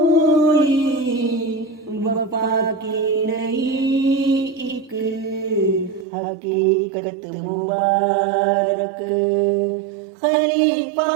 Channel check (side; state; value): left; drops out; at 6.1 s